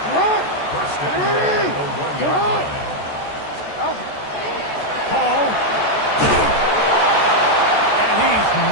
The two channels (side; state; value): right; late; 14 ms